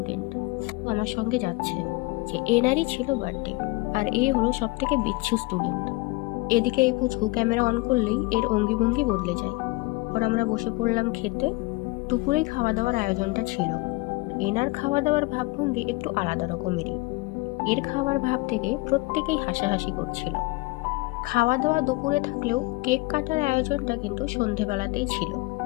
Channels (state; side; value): quieter; right; 23.6 dB